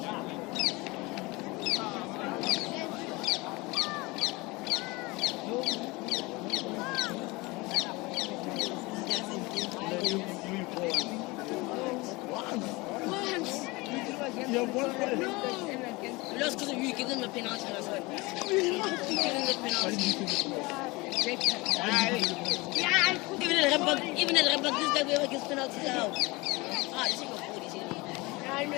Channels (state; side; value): quieter; right; 23.7 dB